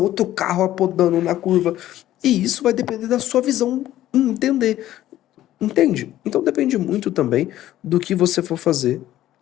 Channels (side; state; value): right; quieter; 13.6 dB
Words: carro apodando na curva. E isso vai depender da sua visão entender. Entende? Então depende muito também do que você for fazer